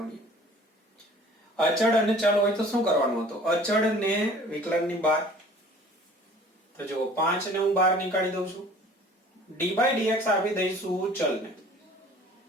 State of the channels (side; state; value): both; normal; correlation 0.49